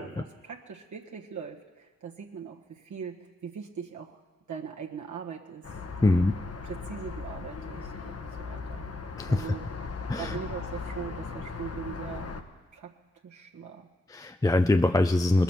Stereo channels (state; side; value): normal; both; correlation 0.82